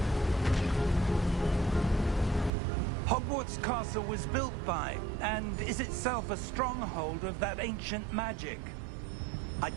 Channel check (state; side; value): drops out; left; at 2.5 s